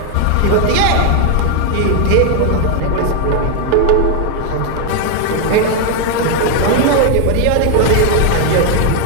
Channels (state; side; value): different; both; correlation 0.01